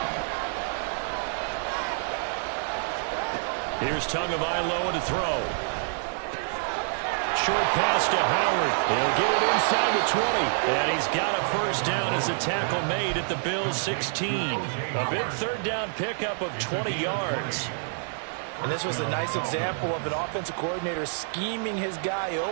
Here's Tagovailoa to throw. Short pass to Howard. He'll get it inside the 20. And he's got a first down as a tackle made at the Bills' 16. A big 3rd down pickup of 20 yards. And this was a nice example of an offensive coordinator scheming his guy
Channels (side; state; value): left; silent; digital silence